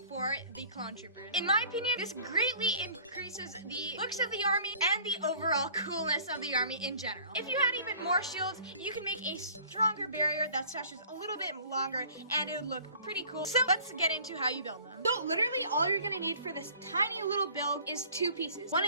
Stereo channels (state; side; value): inverted; both; correlation -0.50